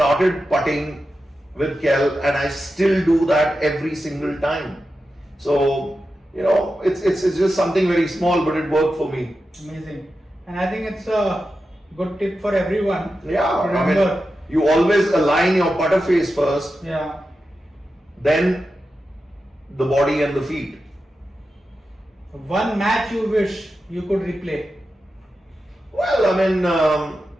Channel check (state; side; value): normal; both; correlation 0.91